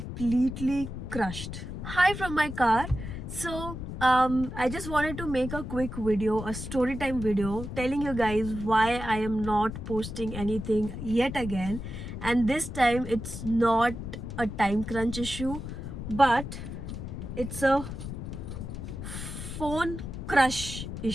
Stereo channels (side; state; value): left; noise; rumble, 7 dB below the sound